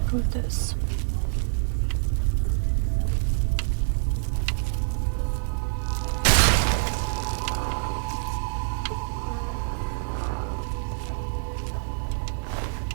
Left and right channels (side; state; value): left; silent; 61 dB below the other